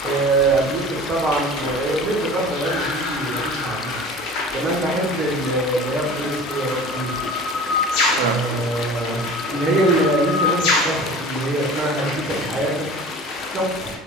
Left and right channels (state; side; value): normal; both; correlation 0.40